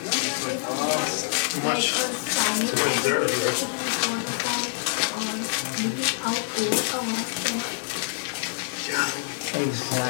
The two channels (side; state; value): right; silent; digital silence